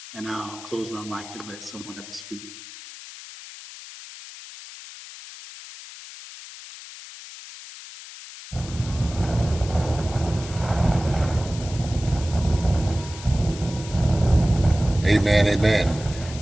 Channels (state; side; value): noise; left; hiss, 15 dB below the sound